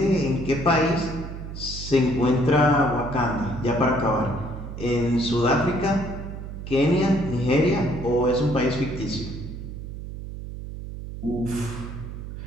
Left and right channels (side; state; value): right; noise; hum, 9 dB below the sound